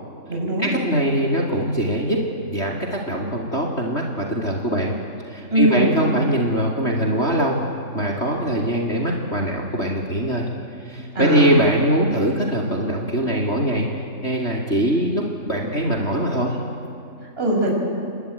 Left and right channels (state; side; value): late; right; 3.2 ms